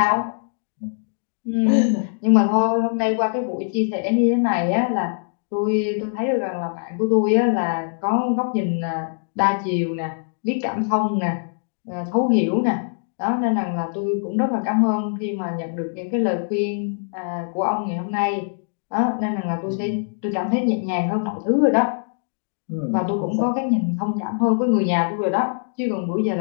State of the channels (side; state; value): right; silent; digital silence